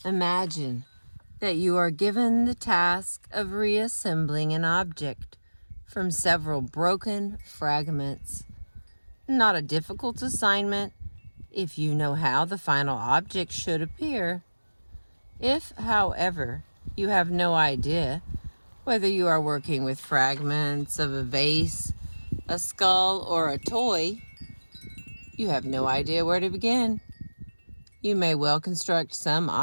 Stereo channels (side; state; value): both; inverted; correlation -1.00